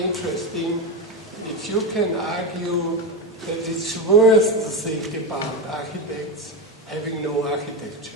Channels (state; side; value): normal; both; correlation 0.15